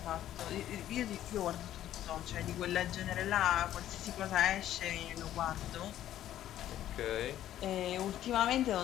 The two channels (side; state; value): right; quieter; 12.3 dB